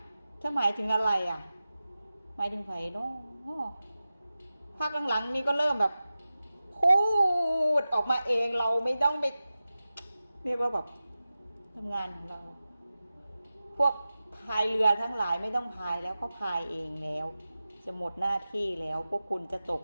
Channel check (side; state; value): both; inverted; correlation -0.95